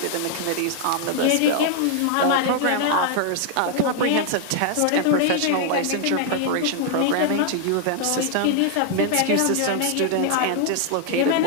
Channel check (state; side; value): different; both; correlation 0.00